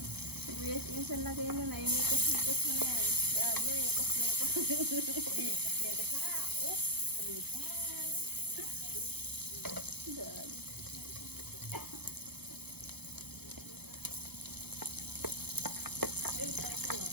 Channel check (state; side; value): late; left; 0.97 ms